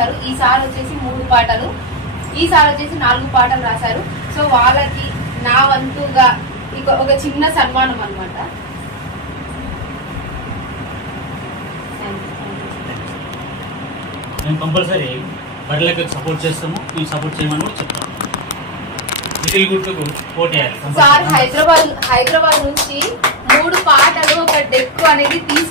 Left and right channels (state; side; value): normal; both; correlation 0.07